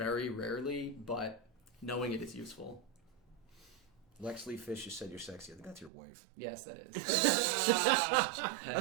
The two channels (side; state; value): left; drops out; at 5.9 s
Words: rarely, but knowing it is useful. Lex Lee Fish, you said you're sexy. I think that's your wife. Yes, that is. I